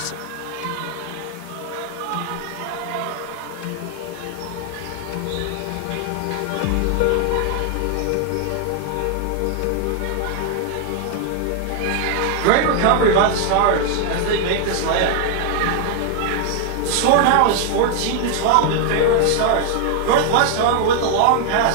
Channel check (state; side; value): different; both; correlation 0.00